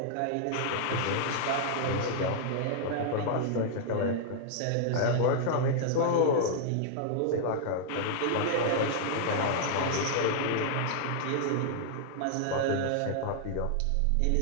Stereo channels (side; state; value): both; different; correlation -0.01